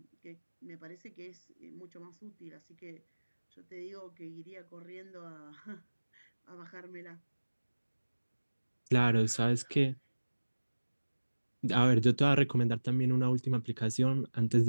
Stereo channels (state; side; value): inverted; both; correlation -1.00